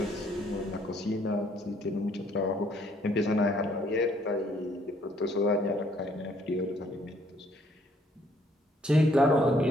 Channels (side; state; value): both; normal; correlation 0.65